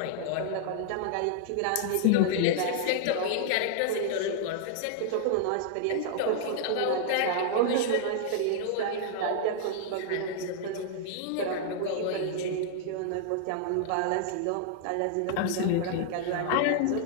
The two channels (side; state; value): both; different; correlation -0.01